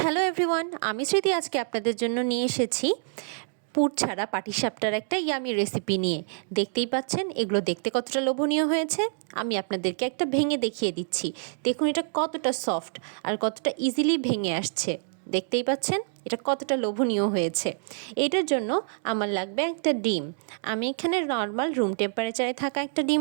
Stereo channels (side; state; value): left; silent; digital silence